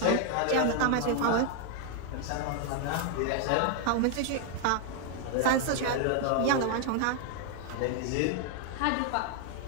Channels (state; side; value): different; both; correlation 0.00